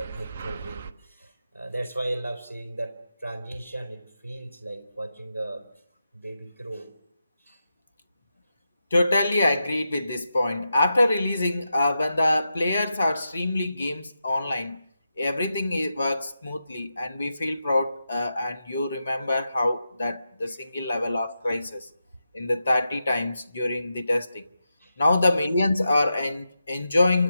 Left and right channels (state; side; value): inverted; both; correlation -0.88